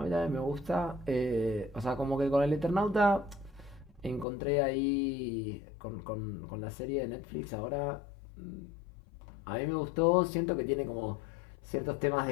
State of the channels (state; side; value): drops out; right; at 4.2 s